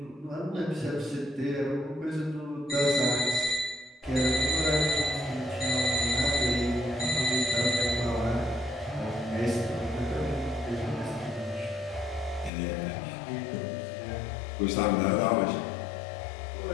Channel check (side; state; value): right; drops out; at 12.5 s